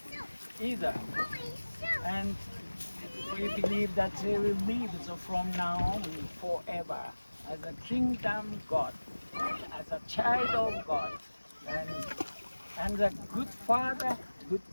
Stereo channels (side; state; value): both; inverted; correlation -1.00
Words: either. And we believe that they will live from now on forever as a kingdom God, as a child of God, and a good father, good